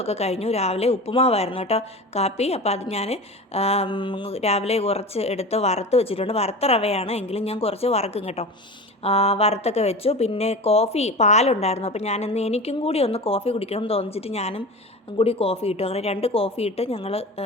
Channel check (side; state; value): both; normal; correlation 0.31